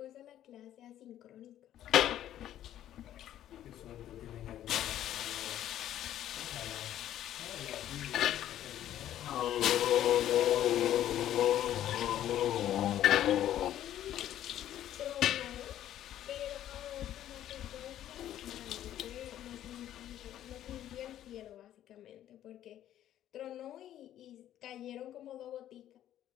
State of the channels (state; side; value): quieter; right; 11.9 dB